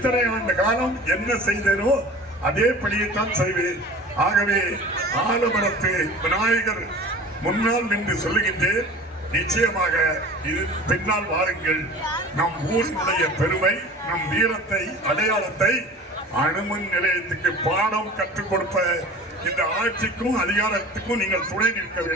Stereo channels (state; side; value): normal; both; correlation 0.40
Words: ஆண்டு காலம் என்ன செய்தேனோ அதே பணியைத்தான் செய்வேன். ஆகவே ஆலமரத்து விநாயகர் முன்னால் நின்று சொல்லுகின்றேன், நிச்சயமாக இது பின்னால் வாருங்கள். நம் ஊரினுடைய பெருமை, நம் வீரத்தை, அடையாளத்தை அணுமின் நிலையத்துக்கு பாடம் கற்றுக் கொடுப்ப இந்த ஆட்சிக்கும் அதிகாரத்துக்கும் நீங்கள் துணை நிற்க